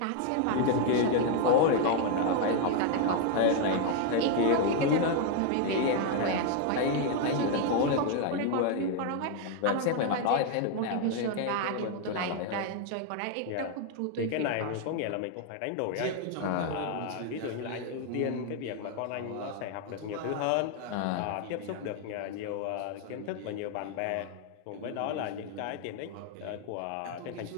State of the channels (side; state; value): both; different; correlation 0.00